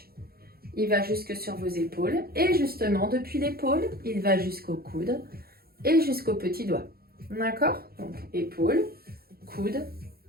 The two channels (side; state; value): left; late; 0.44 ms